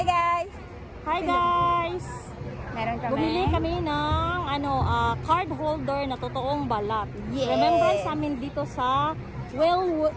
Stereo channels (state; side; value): identical; both; correlation 1.00